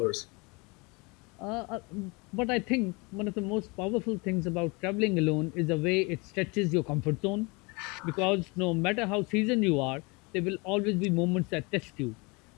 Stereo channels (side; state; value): right; quieter; 27.9 dB